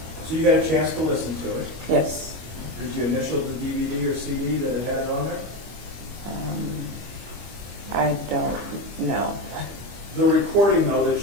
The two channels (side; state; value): left; late; 25 ms